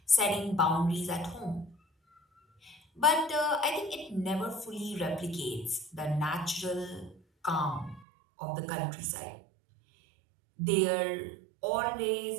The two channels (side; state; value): left; drops out; at 8.1 s